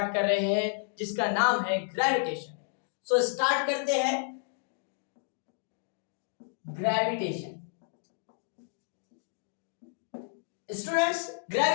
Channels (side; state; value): right; silent; digital silence